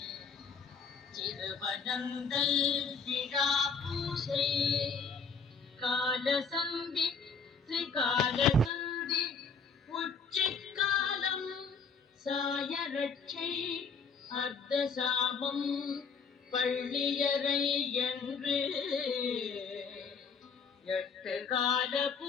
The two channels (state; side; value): quieter; right; 5.2 dB